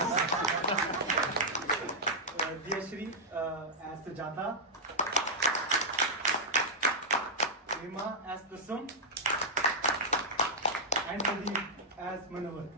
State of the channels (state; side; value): normal; both; correlation -0.06